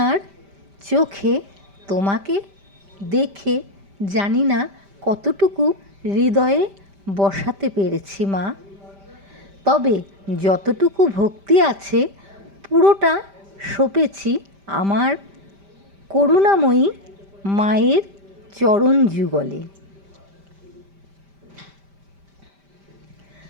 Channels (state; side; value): late; left; 5.1 ms